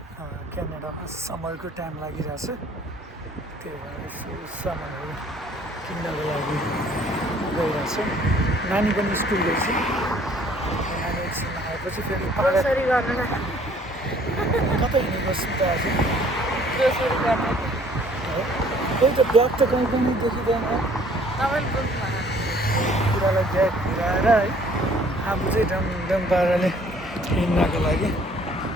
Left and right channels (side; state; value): both; normal; correlation 0.57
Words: क्यानाडामा समरको टाइम लागिरहेछ त्यही भएर यसो सामानहरू किन्नको लागि गइरहेछ नानी पनि स्कुल गएछ नानी एकछिन आएपछि फेरि ग्रोसरी गर्न कतै हिँडेको सुन्दा आज ग्रोसरी गर्न त्यही त ब्याग त कहीँ पनि देखिँदैन तपाईँले बुझ्नु कुरालाई ब्याग घुराएर है आफू चाहिँ डम पाराले हिँड्नको लागि